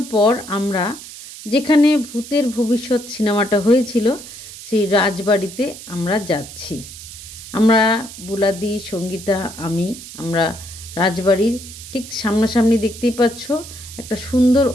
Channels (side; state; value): right; noise; hiss, 14 dB below the sound